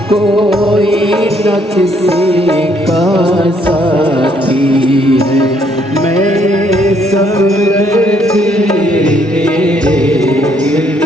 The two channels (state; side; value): normal; both; correlation 0.68